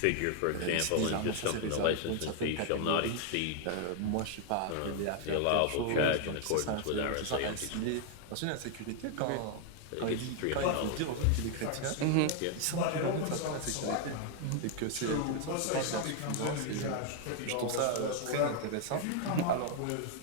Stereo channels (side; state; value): both; different; correlation 0.00